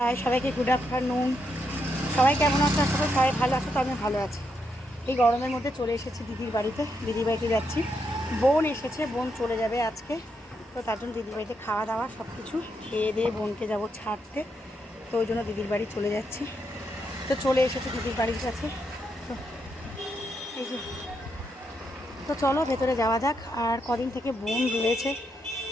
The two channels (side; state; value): both; normal; correlation 0.80